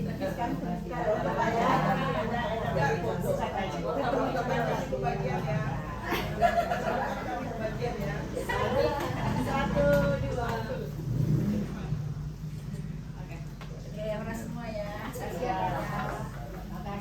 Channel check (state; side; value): identical; both; correlation 1.00